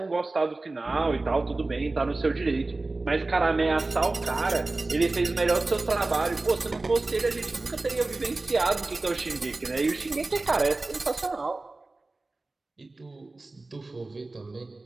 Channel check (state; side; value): quieter; left; 3.2 dB